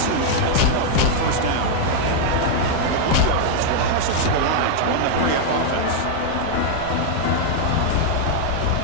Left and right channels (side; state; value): both; different; correlation 0.00